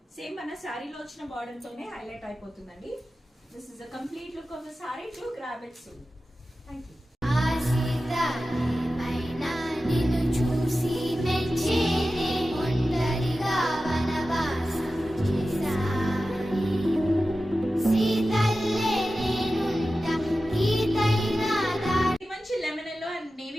సేమ్ మన సారీలో వచ్చిన బార్డర్ తోనే హైలైట్ అయిపోతుందండి. This is a complete look of the saree. To grab it soon. Thank you. మంచి lemon yellow and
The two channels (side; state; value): both; normal; correlation 0.94